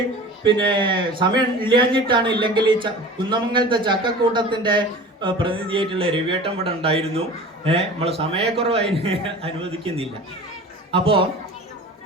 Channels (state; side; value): normal; both; correlation 0.39